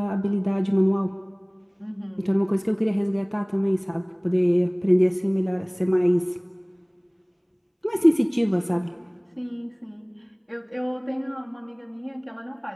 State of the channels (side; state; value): both; identical; correlation 1.00